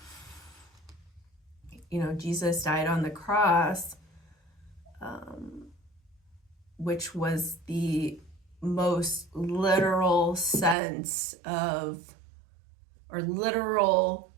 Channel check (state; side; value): drops out; left; at 10.8 s